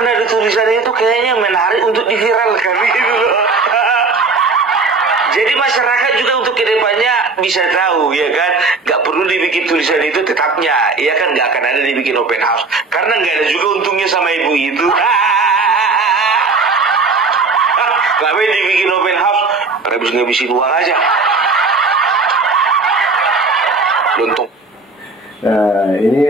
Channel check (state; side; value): quieter; left; 3.9 dB